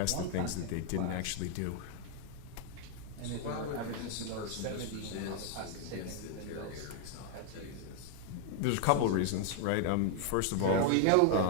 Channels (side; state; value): both; different; correlation 0.00